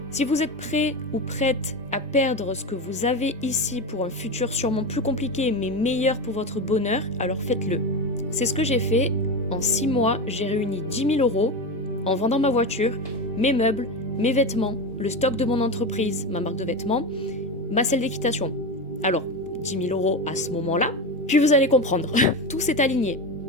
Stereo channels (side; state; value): both; normal; correlation 0.20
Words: Si vous êtes prêt ou prête à perdre ce que vous avez ici pour un futur sûrement plus compliqué mais meilleur pour votre bonheur, alors faites-le. C'est ce que j'ai fait. En 6 mois, j'ai réuni 10 000 € en vendant ma voiture, mes meubles, mes vêtements, le stock de mon entreprise, ma marque de vêtements, ma salle d'équitation. Alors, 10 000 € à ce moment-là, puis vous allez comprendre. Tout s'est aligné.